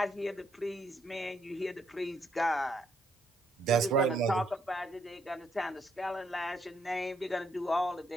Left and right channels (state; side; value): normal; both; correlation 0.73